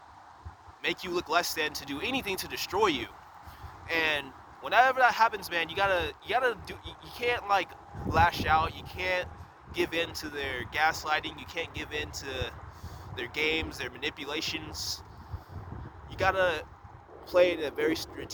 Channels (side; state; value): both; identical; correlation 1.00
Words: make you look less than, to do anything to destroy you. And whenever that happens, man, you can't like lash out, you can't give in to their gaslighting, you can't give in to their games, their manipulations. You gotta play in a very